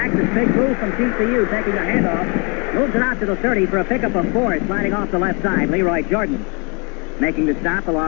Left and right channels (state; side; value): quieter; right; 33.1 dB